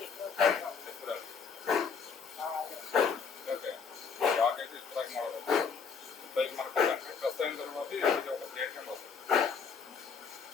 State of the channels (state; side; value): quieter; right; 5.9 dB